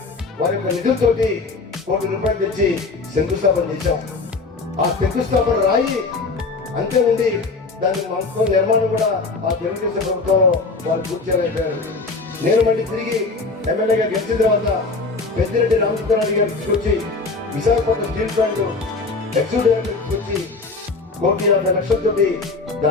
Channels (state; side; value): quieter; right; 3.9 dB